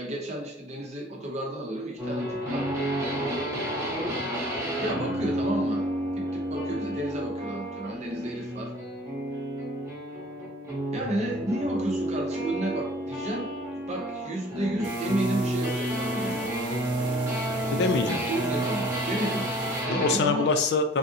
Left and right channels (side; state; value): both; normal; correlation 0.50